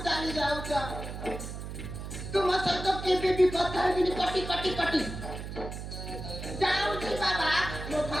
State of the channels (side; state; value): right; noise; hum, 8 dB below the sound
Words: ଚାଲି ଯାଉଛ ତୁମ ସହିତ କେବେ ବି କଥା ହେବିନି କଟି ଯାଉଛି ବାବା ମୋ